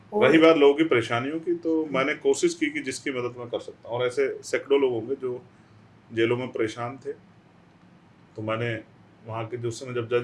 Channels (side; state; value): both; identical; correlation 1.00